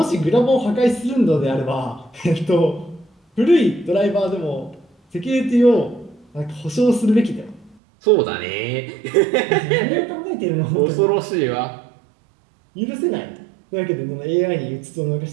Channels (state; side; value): drops out; left; at 7.8 s